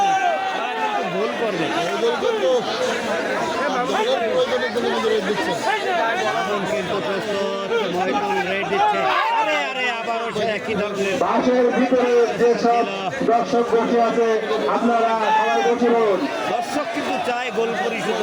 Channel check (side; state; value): both; identical; correlation 1.00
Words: না, তারা কিন্তু ভুল করবে। কিন্তু প্রস্তুত, মহিদুল রেড দিচ্ছে। আরে আরে আবারও সে একই ধরনের বাসের ভিতরে যে সব দর্শক বসে আছে আপনারা সবাই বসে পড়ুন। দর্শক কিন্তু চায় গোল পরিশোধ